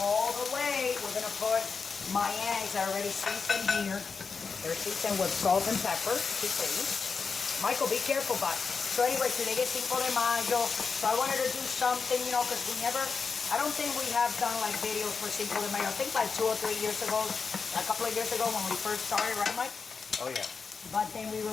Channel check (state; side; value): quieter; right; 5.1 dB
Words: the way, we're gonna put my eggs that are already seasoned here. They're seasoned with salt and pepper, you see. Michael, be careful, bud. So anyway, today is Cinco de Mayo, so I wanted to do something, you know, because I don't think we have done like videos for Cinco de Mayo. I think like 2 or 3 years ago, a couple of years ago when we first started, right, Mike? Oh, yeah. But then we